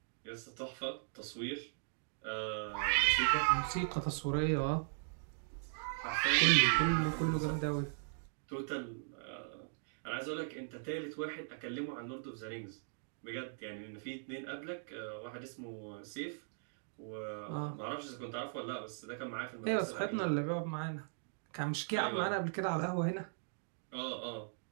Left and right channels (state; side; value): silent; left; digital silence